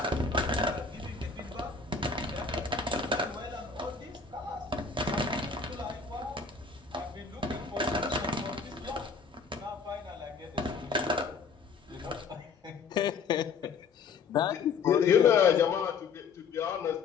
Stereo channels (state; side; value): quieter; right; 5.2 dB